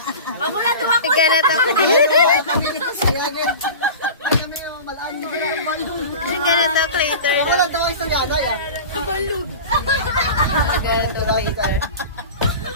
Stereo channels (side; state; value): both; inverted; correlation -0.33